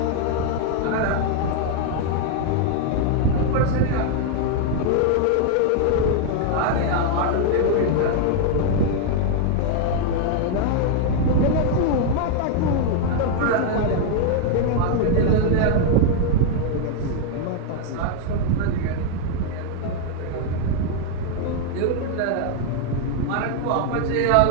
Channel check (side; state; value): both; different; correlation 0.00